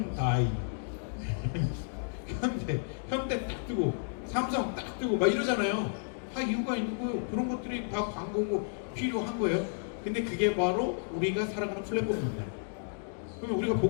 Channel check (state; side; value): silent; right; digital silence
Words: 현대 딱 뜨고, 삼성 딱 뜨고, 막 이러잖아요. 다 이유가 있는 거예요. 그런 것들이 다 광고고 필요한 거예요. 근데 그게 바로 우리가 살아가는 플랫폼입니다. 그러면 우리가